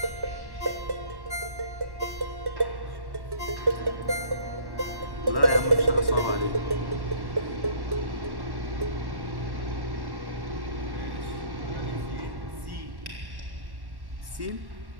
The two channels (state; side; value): late; left; 1.1 ms